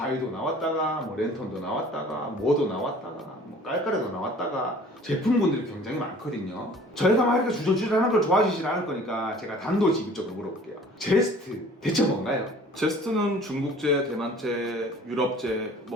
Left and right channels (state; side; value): normal; both; correlation 0.50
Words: 나왔다가 뭐 랜턴도 나왔다가 뭐도 나왔다가 뭐 깔깔이도 나왔다가 제품군들이 굉장히 많거든요. 저희가 막 이렇게 주저주저하는 걸 좋아하시진 않을 거니까 제가 단도직입적으로 물어볼게요. 제스트 대체 뭔가요? 제스트는 중국제, 대만제, 유럽제